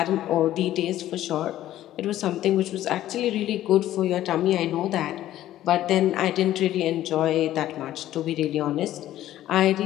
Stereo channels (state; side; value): quieter; right; 13.4 dB